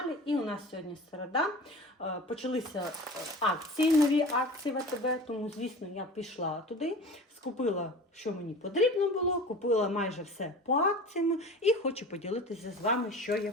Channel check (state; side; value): normal; both; correlation 0.37